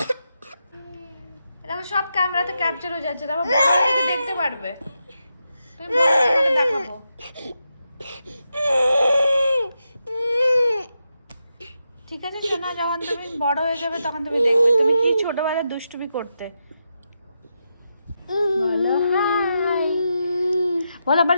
দেখো সব ক্যামেরাতে ক্যাপচার হয়ে যাচ্ছে, তারপর বড় থেকে দেখতে পারবে। তুমি তোমাকে দেখাবো। ঠিক আছে শোনা, যখন তুমি বড় হয়ে যাবে তখন তুমি দেখবে তুমি কি ছোটবেলায় দুষ্টুমি করতে। বলো হাই, বল। আবার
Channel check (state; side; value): inverted; both; correlation -0.86